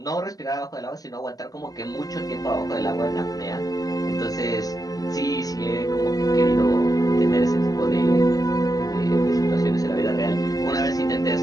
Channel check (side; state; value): right; late; 0.17 ms